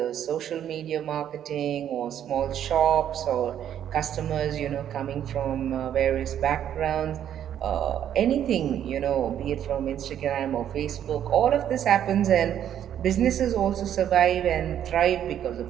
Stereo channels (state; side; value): quieter; left; 10.1 dB